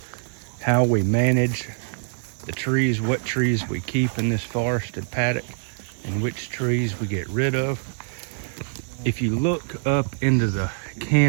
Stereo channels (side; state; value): left; silent; 59 dB below the other